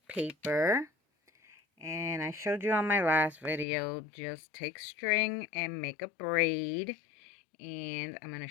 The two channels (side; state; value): right; drops out; at 3.7 s